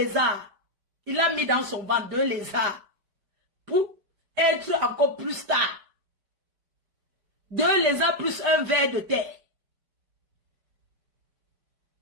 Il a mis dans son ventre 2 lézards. Pour être encore plus tard. 2 lézards plus un ver de terre.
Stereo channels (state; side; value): late; left; 5.0 ms